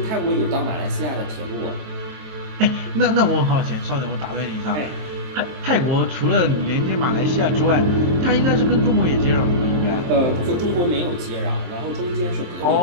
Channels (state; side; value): late; left; 23 ms